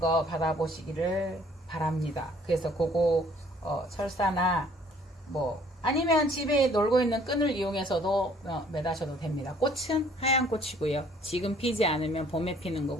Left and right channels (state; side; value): normal; both; correlation 0.59